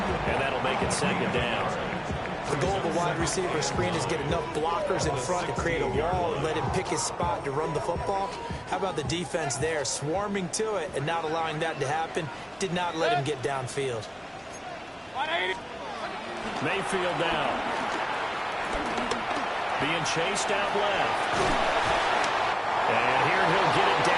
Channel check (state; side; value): identical; both; correlation 1.00